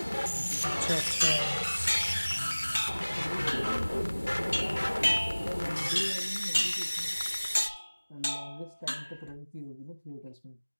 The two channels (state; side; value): inverted; both; correlation -1.00